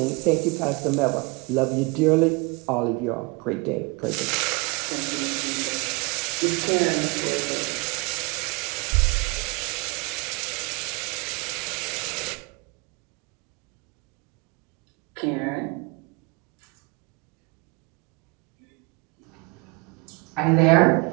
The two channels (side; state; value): left; quieter; 28.2 dB